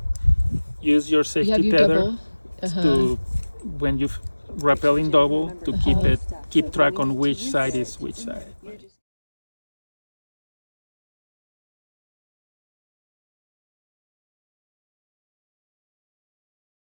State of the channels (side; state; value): both; inverted; correlation -1.00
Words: use your You safety have your tether double. to, when you rappelling double, to keep track on which side is which side.